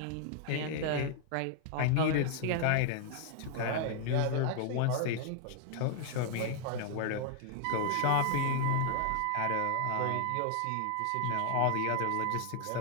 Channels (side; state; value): both; different; correlation 0.00